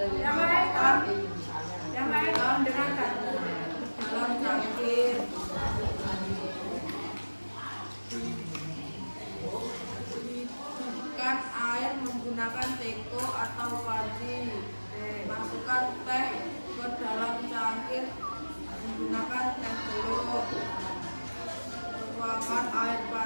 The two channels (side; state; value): both; inverted; correlation -1.00